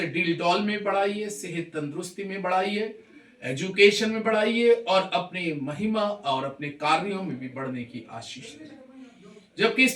डील डॉल में बढ़ाइए, सेहत तंदुरुस्ती में बढ़ाइए, एजुकेशन में बढ़ाइए और अपने महिमा और अपने कार्यों में भी बढ़ने की आशीष दे। जबकि इस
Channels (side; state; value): both; identical; correlation 1.00